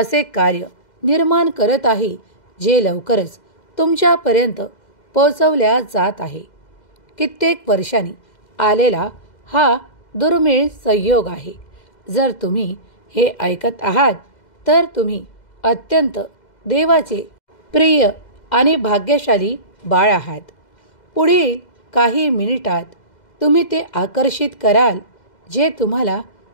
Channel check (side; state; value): right; late; 2.0 ms